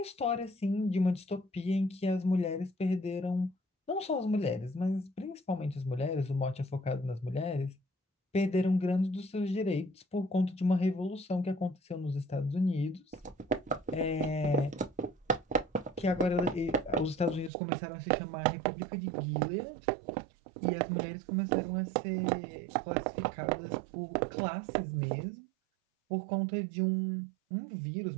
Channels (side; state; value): left; drops out; at 17.5 s